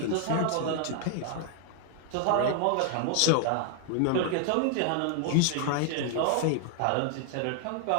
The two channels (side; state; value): both; different; correlation 0.00